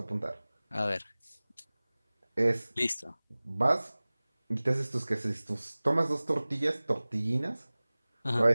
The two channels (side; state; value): both; inverted; correlation -0.99